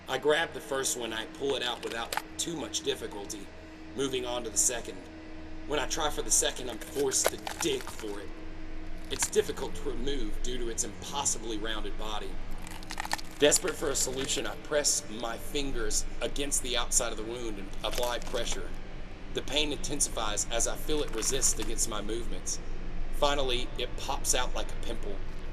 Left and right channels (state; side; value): identical; both; correlation 1.00